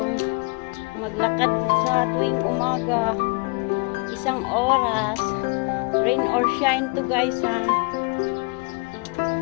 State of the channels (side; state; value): right; quieter; 32.1 dB